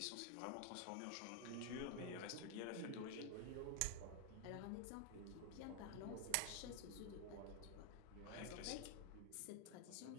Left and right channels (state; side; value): different; both; correlation 0.00